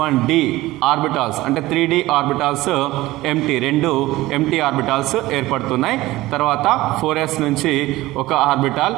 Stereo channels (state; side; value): quieter; left; 18.1 dB